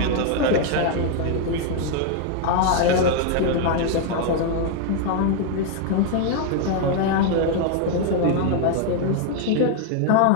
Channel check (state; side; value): different; both; correlation 0.00